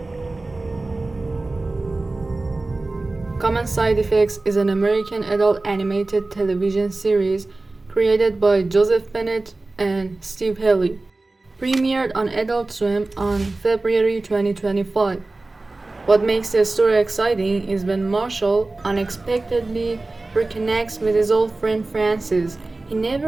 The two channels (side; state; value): left; quieter; 3.2 dB